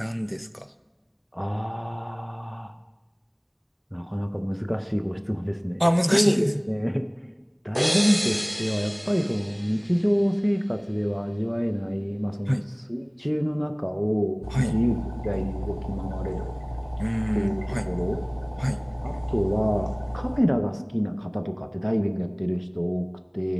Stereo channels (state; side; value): identical; both; correlation 1.00